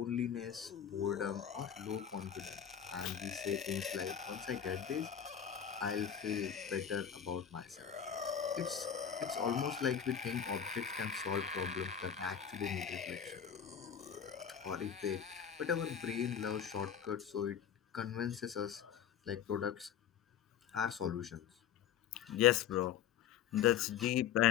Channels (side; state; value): right; quieter; 8.6 dB